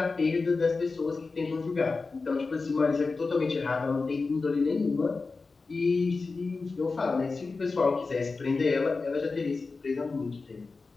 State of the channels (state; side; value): quieter; right; 4.1 dB